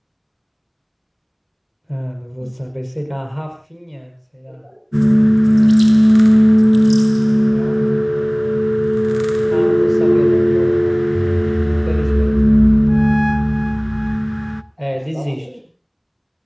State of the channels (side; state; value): both; identical; correlation 1.00